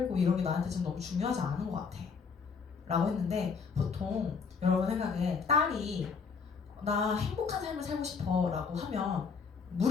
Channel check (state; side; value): quieter; right; 5.5 dB